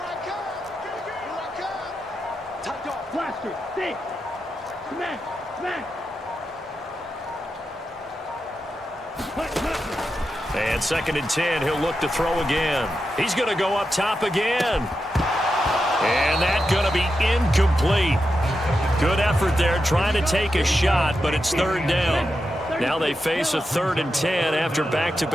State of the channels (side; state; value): both; normal; correlation 0.88